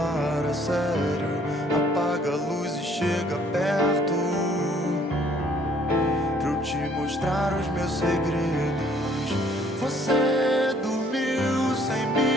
a sério. Apaga a luz e chega perto, pra eu te mostrar os meus segredos. Você dormiu sem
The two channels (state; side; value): normal; both; correlation 0.60